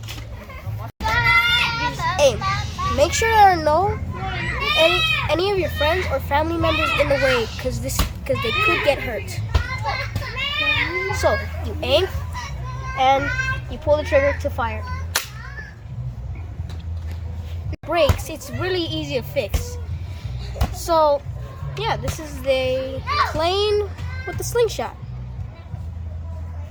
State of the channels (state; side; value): identical; both; correlation 1.00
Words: Aim. Make sure there are no any of your friends or family members in the way, because they could get hurt. So you aim and you pull the trigger to fire. Brakes, it's really easy to fix. So yeah, this is the plane with the slingshot.